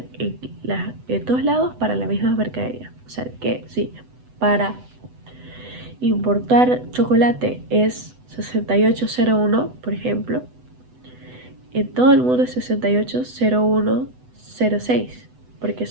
en todos lados para la misma mercadería. O sea que sí, para importar chocolate es 6801, por ejemplo. En todo el mundo es 680106, porque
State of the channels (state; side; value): late; left; 8.0 ms